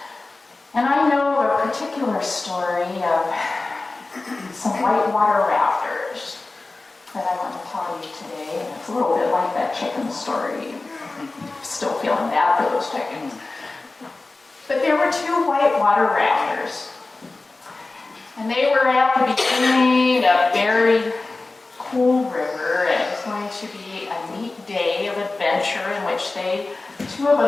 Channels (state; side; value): quieter; right; 3.4 dB